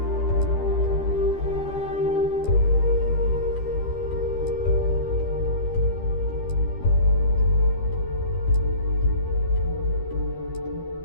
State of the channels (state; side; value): late; right; 12 ms